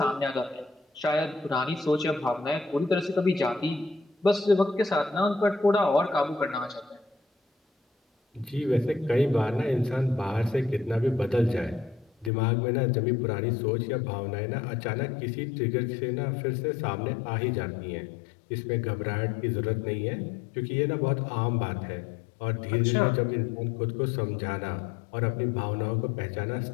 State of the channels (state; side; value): drops out; right; at 12.3 s